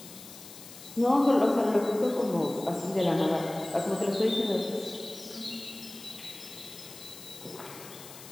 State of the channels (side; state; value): left; noise; hiss, 16 dB below the sound